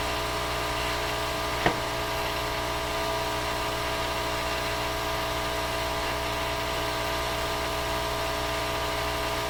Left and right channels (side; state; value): both; identical; correlation 1.00